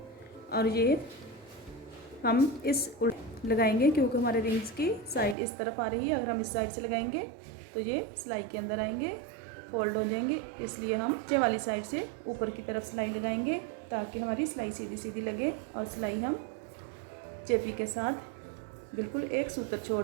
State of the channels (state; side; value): drops out; left; at 5.4 s